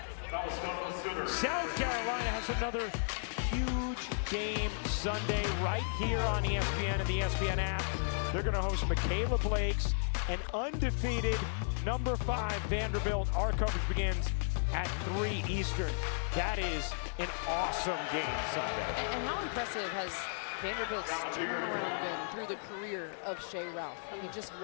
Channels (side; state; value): right; silent; digital silence